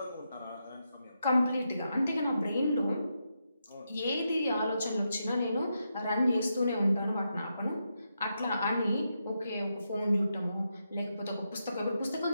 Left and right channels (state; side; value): inverted; both; correlation -0.84